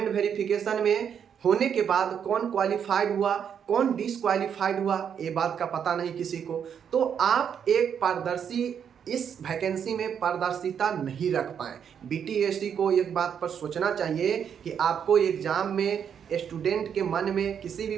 वेरिफिकेशन में होने के बाद कौन क्वालिफाइड हुआ कौन डिसक्वालिफाइड हुआ ये बात का पता नहीं किसी को, तो आप एक पारदर्शी इस वैकेंसी में पारदर्शिता नहीं रख पाए। बीटीएससी को एक बात पर सोचना चाहिए कि आपको एग्जाम में स्टूडेंट के मन में किसी भी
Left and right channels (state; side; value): quieter; left; 8.0 dB